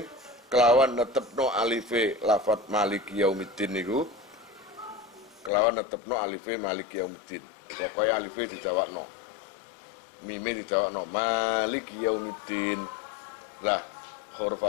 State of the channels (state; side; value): drops out; right; at 5.5 s